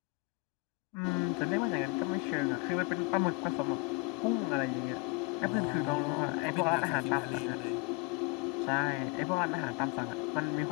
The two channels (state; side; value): quieter; right; 26.5 dB